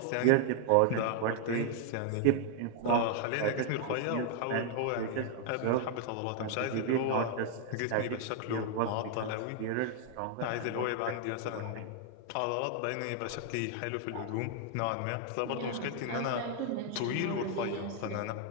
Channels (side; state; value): both; different; correlation 0.00